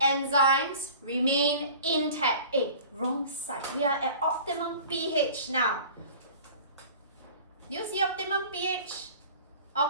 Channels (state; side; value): inverted; both; correlation -0.43